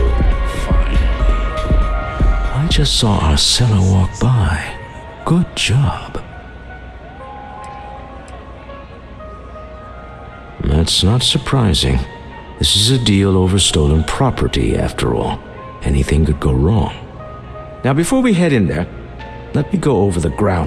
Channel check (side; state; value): both; identical; correlation 1.00